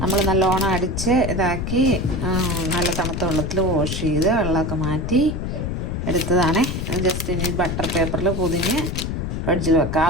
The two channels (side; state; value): left; noise; rumble, 3 dB below the sound